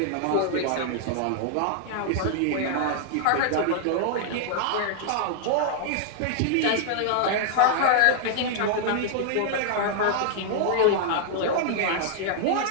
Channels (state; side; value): different; both; correlation -0.01